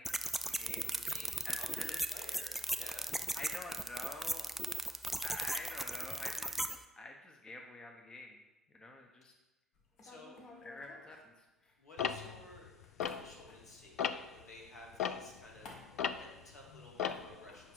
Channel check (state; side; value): normal; both; correlation 0.63